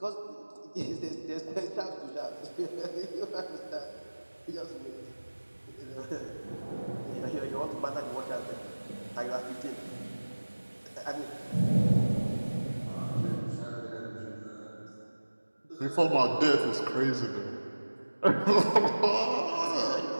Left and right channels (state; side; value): inverted; both; correlation -1.00